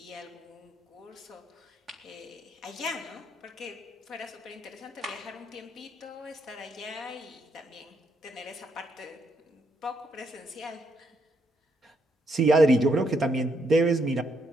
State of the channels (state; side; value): normal; both; correlation 0.76